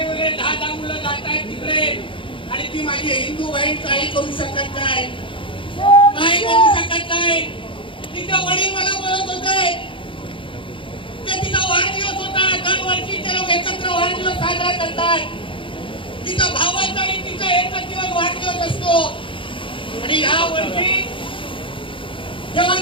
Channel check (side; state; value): right; late; 0.25 ms